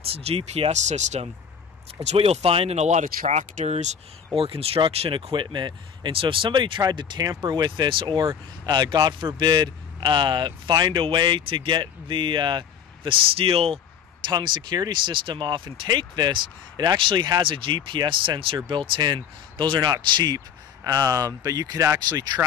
GPS system. It's what you'll find in a lot of tractors or construction equipment. And so if somebody tried to tamper with this or, God forbid, find a way to get the steel tongue security system off and take this, it actually has a GPS sensor built in. Those are not cheap, but you could actually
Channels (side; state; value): right; quieter; 7.9 dB